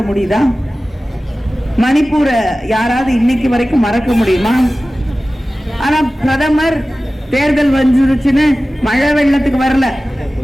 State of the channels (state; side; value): normal; both; correlation 0.96